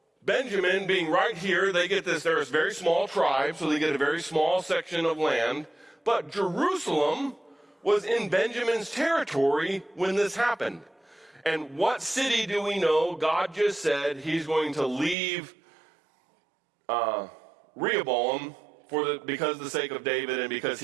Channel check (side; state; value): left; drops out; at 15.2 s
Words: Benjamin being right here, they get this, they're a very small tribe, so they get a very small section of land. But Jerusalem was in Benjamin's territory when this happened. And what city do we know? God just said he's going to leave Rehoboam because of the sake of David and because